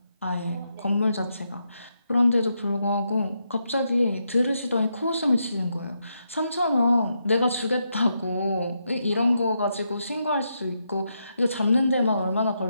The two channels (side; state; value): both; inverted; correlation -0.82